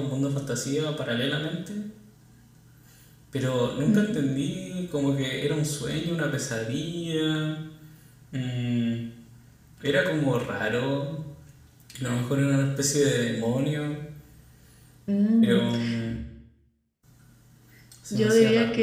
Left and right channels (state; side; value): identical; both; correlation 1.00